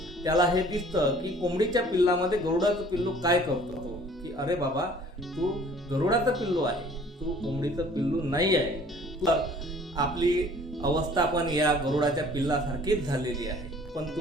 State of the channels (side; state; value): both; normal; correlation 0.53